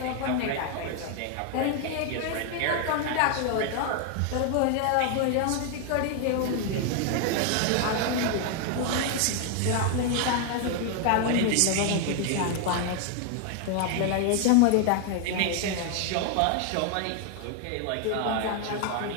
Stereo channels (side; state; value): both; different; correlation 0.00